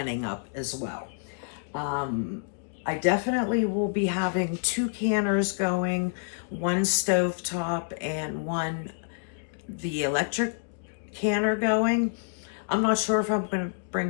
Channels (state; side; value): silent; right; digital silence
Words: up as well. I definitely will be having 2 canners going, one stovetop and one the electric canner going. I'm not sure if I'm going to